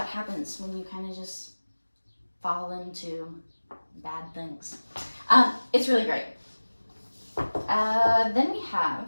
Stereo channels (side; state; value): both; inverted; correlation -1.00